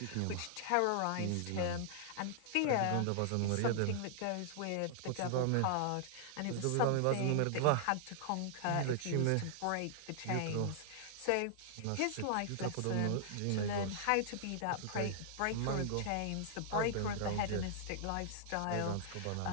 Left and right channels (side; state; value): both; different; correlation -0.01